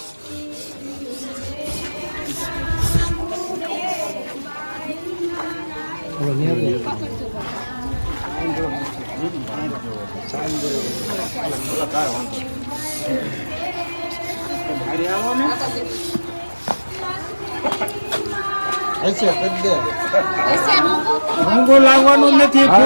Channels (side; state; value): both; inverted; correlation -1.00